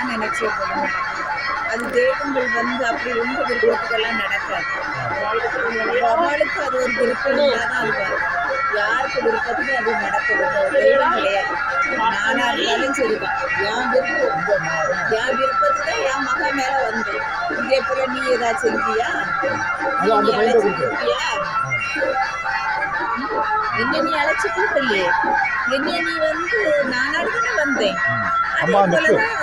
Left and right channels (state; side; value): noise; left; rumble, 19 dB below the sound